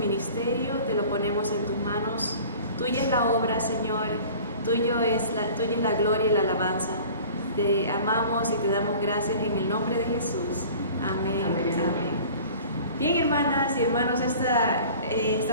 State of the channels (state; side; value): inverted; both; correlation -0.44